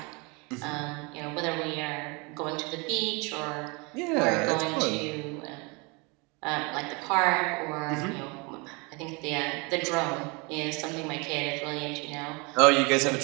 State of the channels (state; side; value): quieter; left; 29.2 dB